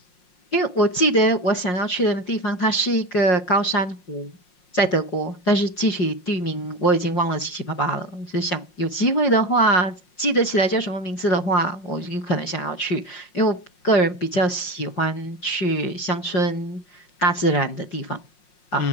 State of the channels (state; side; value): late; right; 5.5 ms